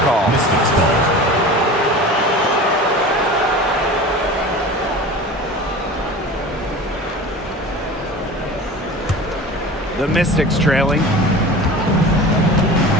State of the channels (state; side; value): normal; both; correlation 0.36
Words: call. Mystics ball. The Mystics trailing.